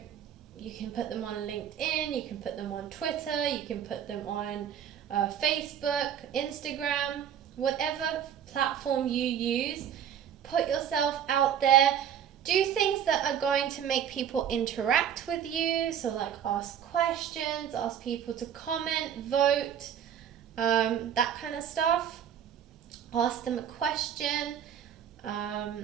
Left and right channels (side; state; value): left; quieter; 9.1 dB